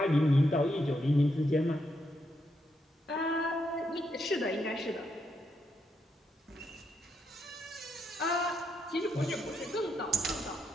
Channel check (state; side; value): normal; both; correlation 0.80